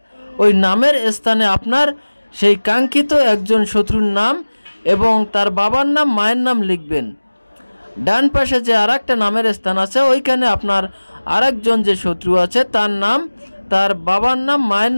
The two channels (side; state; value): both; inverted; correlation -1.00